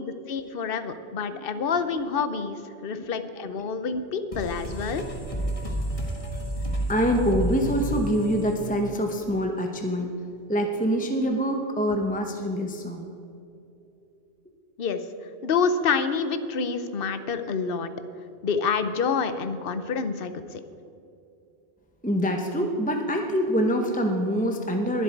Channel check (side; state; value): both; normal; correlation 0.29